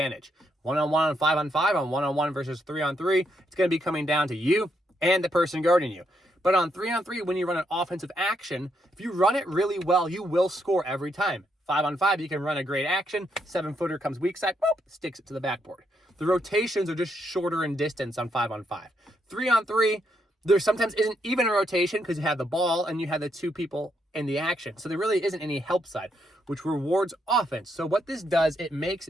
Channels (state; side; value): normal; both; correlation 0.77